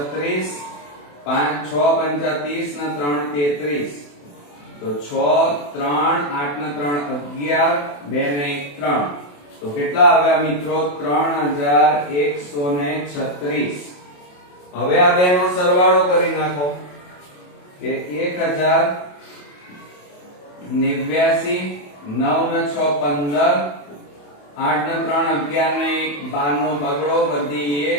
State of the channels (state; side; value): late; right; 28 ms